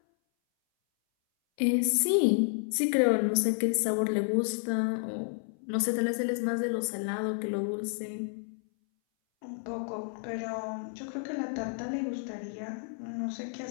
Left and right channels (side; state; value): right; silent; 57 dB below the other